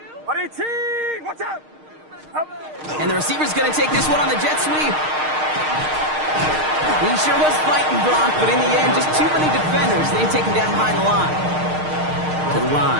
18. What's up? And the receiver's going to take this one on the jet sweep. He sure was fighting Brock, but in the end, just too many defenders. They take him down behind the line. To the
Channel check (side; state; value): left; late; 6.5 ms